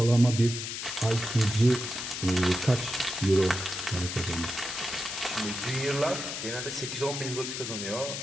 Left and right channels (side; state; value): left; noise; hiss, 5 dB below the sound